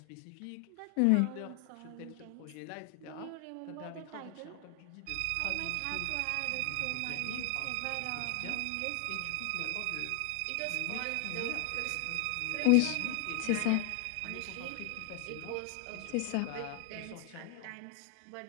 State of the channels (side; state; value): both; different; correlation 0.00